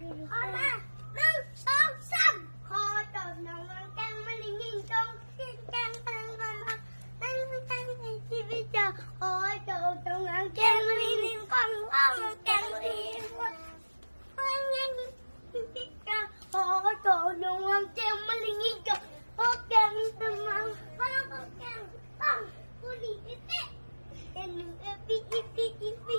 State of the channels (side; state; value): both; inverted; correlation -1.00